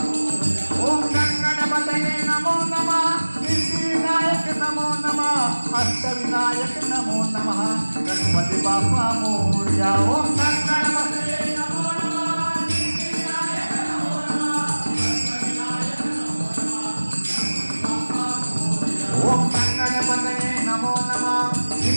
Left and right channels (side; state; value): both; inverted; correlation -1.00